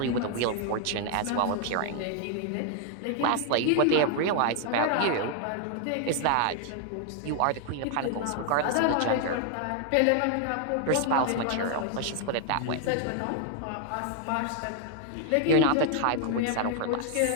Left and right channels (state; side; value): different; both; correlation 0.00